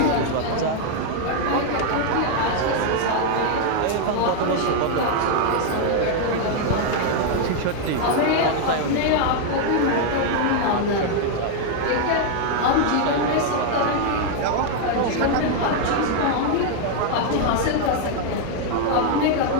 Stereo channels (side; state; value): both; different; correlation 0.00